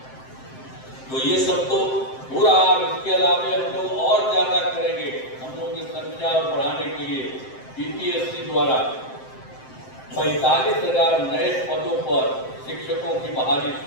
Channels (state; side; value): late; right; 7.7 ms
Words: तो ये सब तो हो रहा है। इसके अलावा हम लोग और ज्यादा करेंगे। हम लोगों की संख्या और बढ़ाने के लिए बीपीएससी द्वारा 45,000 नए पदों पर शिक्षकों की बहाली